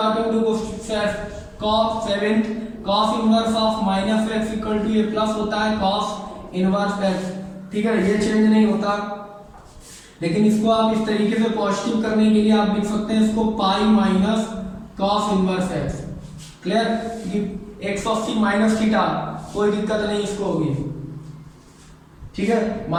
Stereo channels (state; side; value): identical; both; correlation 1.00